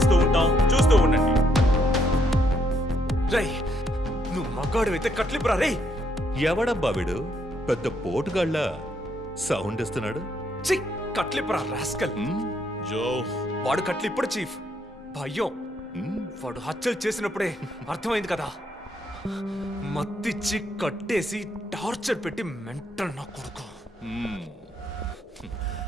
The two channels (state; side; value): normal; both; correlation 0.73